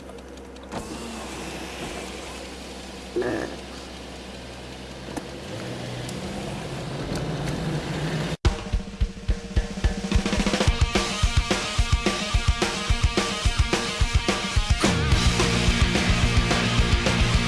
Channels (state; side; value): identical; both; correlation 1.00